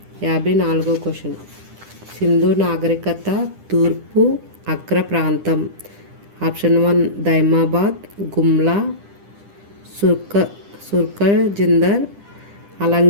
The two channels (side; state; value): left; late; 10 ms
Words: 54వ క్వశ్చన్. సింధు నాగరికత తూర్పు అగ్ర ప్రాంతం. Option 1 Daimabad, Gumla, Sutkagendor,